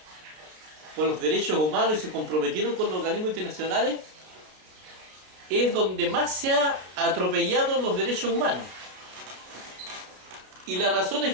por los derechos humanos y se comprometieron con los organismos internacionales, es donde más se ha atropellado los derechos humanos. Y la razón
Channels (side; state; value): left; late; 32 ms